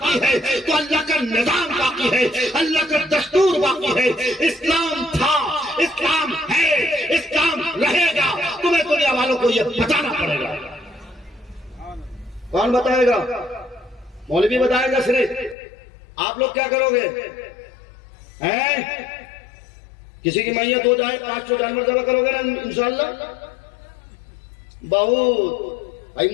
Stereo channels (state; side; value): drops out; right; at 15.6 s